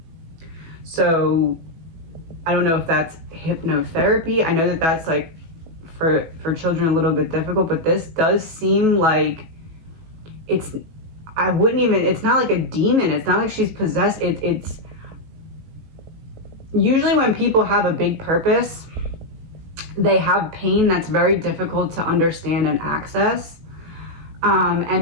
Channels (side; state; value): left; late; 18 ms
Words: So I don't know if that's hypnotherapy. I know that that's like for children a little bit difficult, but this does seem like it's not like a demon. It's not like she's possessed. It's usually when people have a big purpose, they have pain that's very difficult to understand and access.